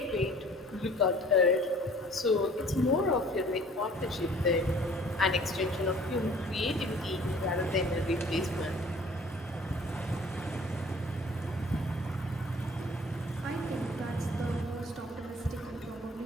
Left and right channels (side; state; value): both; normal; correlation 0.52